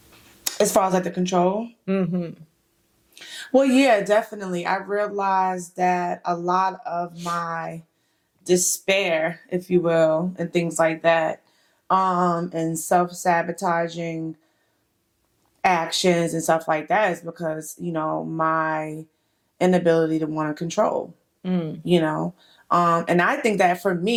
As far as like the control? Well, yeah, definitely. I realized that a lot of my despair, if you will, and things like that, and self-sabotaging actions and stuff like that is because, my inability to want to control, and I think that for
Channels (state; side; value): identical; both; correlation 1.00